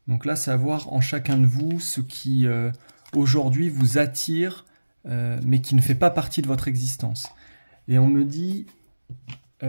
Donc là, c'est à voir en chacun de vous ce qui aujourd'hui vous attire, mais qui ne fait pas partie de votre existence. Et on me dit,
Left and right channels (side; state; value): both; inverted; correlation -1.00